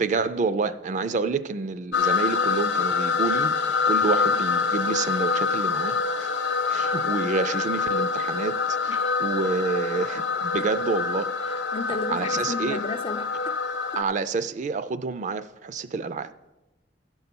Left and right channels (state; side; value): normal; both; correlation 0.21